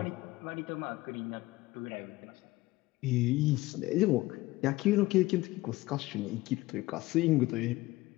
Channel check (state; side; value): quieter; right; 19.3 dB